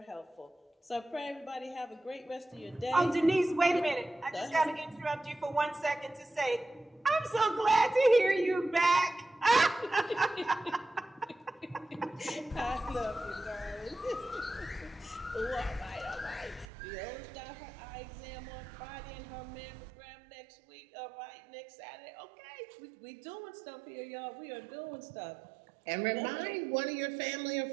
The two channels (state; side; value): drops out; left; at 16.7 s